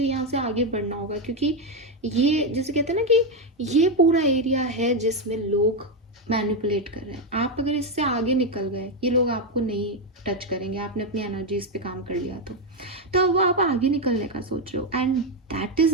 यहाँ से आगे बढ़ना होगा, क्योंकि ये जैसे कहते हैं ना कि ये पूरा एरिया है जिसमें लोग मैनिपुलेट कर रहे हैं। आप अगर इससे आगे निकल गए, ये लोग आपको नहीं टच करेंगे, आपने अपनी एनर्जी इस पे काम कर लिया तो अब आप आगे निकलने का सोच रहे हो। And that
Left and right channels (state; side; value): normal; both; correlation 0.06